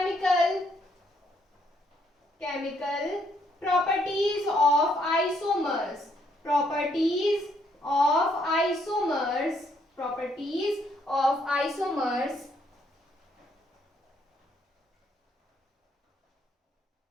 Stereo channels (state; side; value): normal; both; correlation 0.71